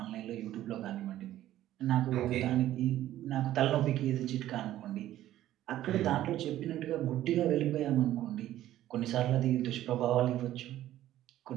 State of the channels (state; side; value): quieter; left; 13.4 dB